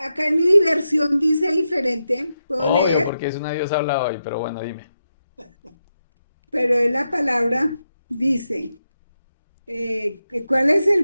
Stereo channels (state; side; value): inverted; both; correlation -0.87